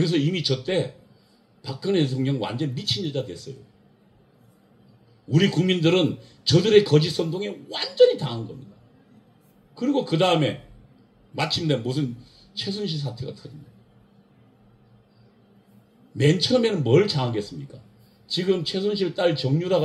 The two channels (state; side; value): identical; both; correlation 1.00